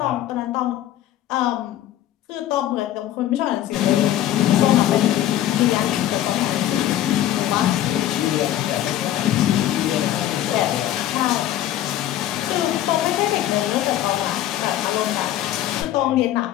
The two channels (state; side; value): quieter; right; 12.7 dB